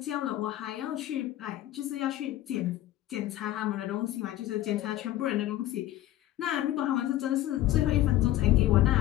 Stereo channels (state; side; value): quieter; right; 14.4 dB